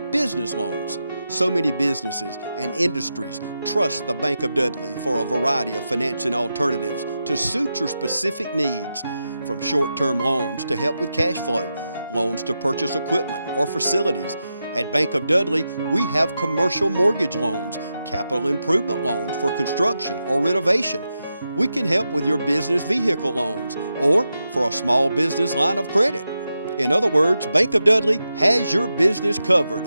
business loans. So many businesses and industries trust the Bank of Dudley for a variety of financing alternatives to suit your specific needs, from short-term loans to help with cash flow, loans to purchase equipment or facilities. At Bank of Dudley, we have commercial mortgage loans, capital improvement loans for construction or renovation. We can help with your business vehicle loans or for a small business line of credit. In other words, Bank of Dudley has your business covered.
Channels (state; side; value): inverted; both; correlation -0.88